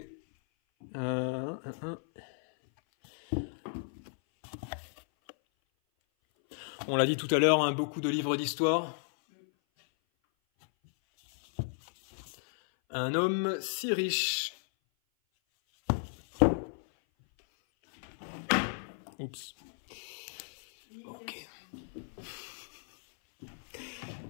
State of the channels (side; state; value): right; silent; 55 dB below the other